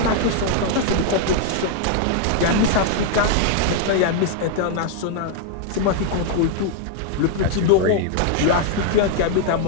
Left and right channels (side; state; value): both; different; correlation 0.00